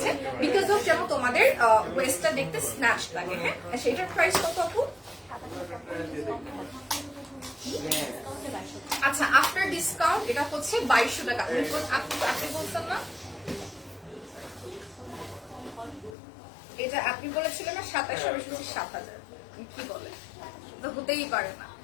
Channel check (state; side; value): drops out; right; at 16.2 s